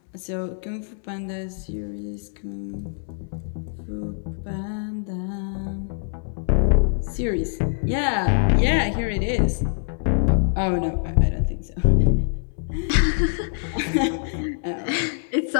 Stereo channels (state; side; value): silent; right; 62 dB below the other